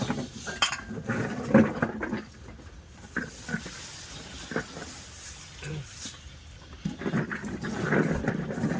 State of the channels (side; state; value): both; identical; correlation 1.00